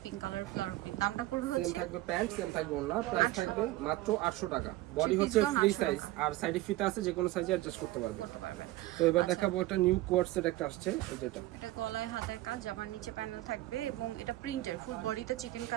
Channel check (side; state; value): left; quieter; 17.4 dB